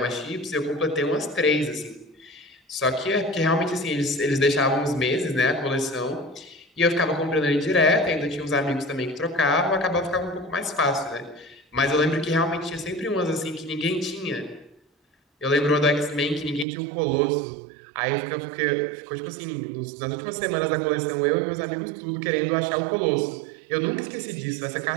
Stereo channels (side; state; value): left; drops out; at 16.7 s